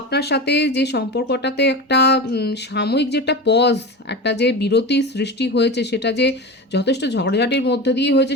সাথে যে সম্পর্কটাতে একটা সাময়িক যেটা পজ, একটা যে বিরতি সৃষ্টি হয়েছে, সেটা যে যথেষ্ট ঝগড়াঝাটির মধ্যে দিয়ে হয়েছে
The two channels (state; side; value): normal; both; correlation 0.26